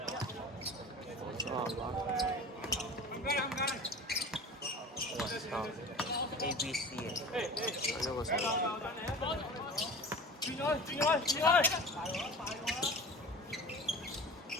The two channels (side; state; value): both; normal; correlation 0.37